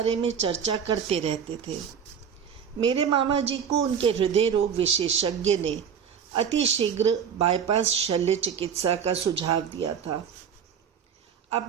में चर्चा करते रहते थे। मेरे मामा जी को उनके हृदय रोग विशेषज्ञ ने अति शीघ्र बाईपास शल्य चिकित्सा का सुझाव दिया था।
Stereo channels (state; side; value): quieter; left; 7.6 dB